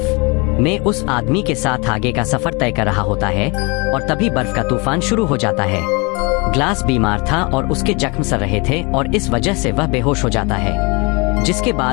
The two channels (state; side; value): quieter; right; 28.9 dB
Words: में उस आदमी के साथ आगे का सफर तय कर रहा होता है और तभी बर्फ का तूफान शुरू हो जाता है। ग्लास बीमार था और उसके जख्म सर रहे थे और इस वजह से वह बेहोश हो जाता है, जिसके